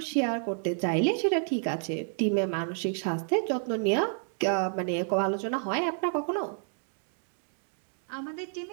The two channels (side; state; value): left; silent; 56 dB below the other